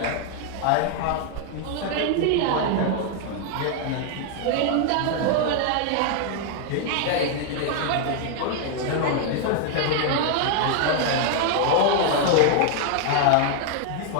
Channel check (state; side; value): different; both; correlation 0.00